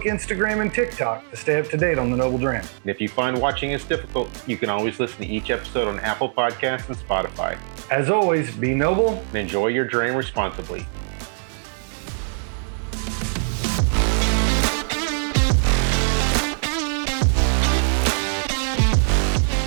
Instagram, and TikTok to stay up to date on the Noble Dram. And if you find watching us difficult, you can always listen to each episode on Apple Podcasts and Spotify. As always, be noble And enjoy your dram responsibly.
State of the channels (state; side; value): silent; left; digital silence